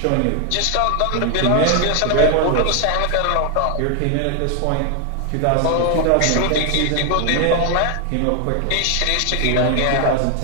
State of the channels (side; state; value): both; different; correlation 0.00